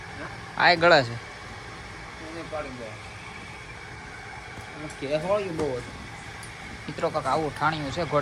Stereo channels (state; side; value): identical; both; correlation 1.00